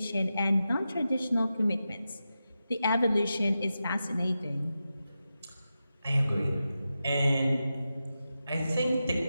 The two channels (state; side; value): inverted; both; correlation -0.91